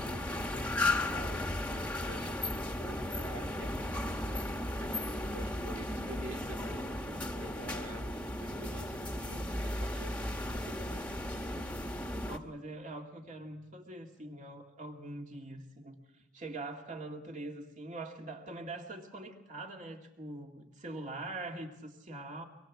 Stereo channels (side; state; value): both; normal; correlation 0.69